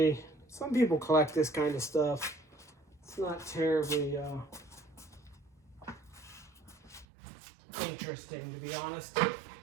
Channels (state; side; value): drops out; left; at 7.1 s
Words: some people collect this kind of stuff. It's not terribly interesting, to be honest.